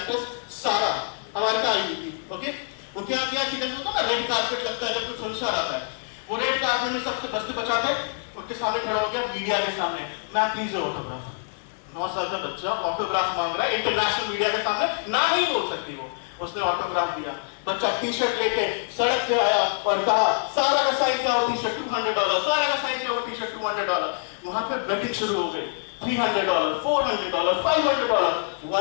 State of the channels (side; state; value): right; silent; digital silence